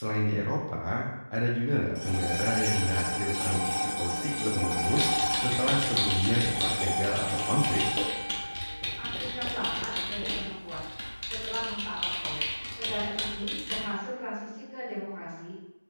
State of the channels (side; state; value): both; inverted; correlation -1.00